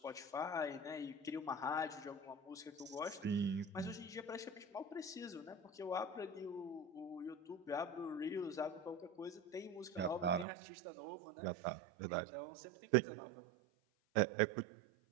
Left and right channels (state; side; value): drops out; left; at 10.5 s